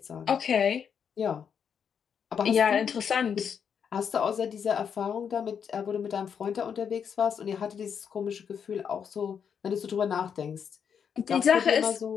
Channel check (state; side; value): quieter; right; 7.3 dB